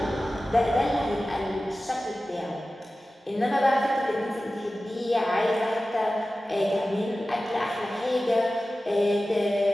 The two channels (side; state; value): both; normal; correlation 0.95